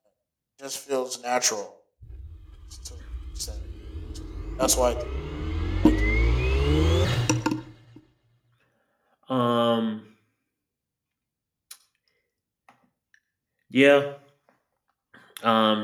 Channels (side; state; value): both; identical; correlation 1.00